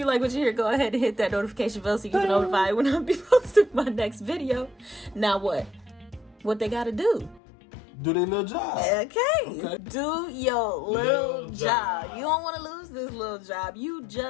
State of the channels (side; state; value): right; drops out; at 7.4 s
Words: like what you hear, go ahead and hit that notification bell so you can notify when I be posting my next video. Now what? What they gotta do? Do their little job. Okay. Do your little job. You don't want to lose this little job. You